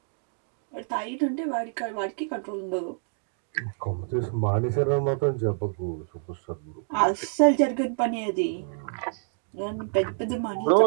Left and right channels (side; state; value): left; silent; digital silence